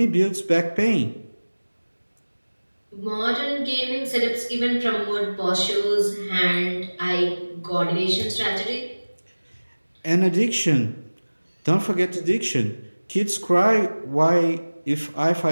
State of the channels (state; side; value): inverted; both; correlation -1.00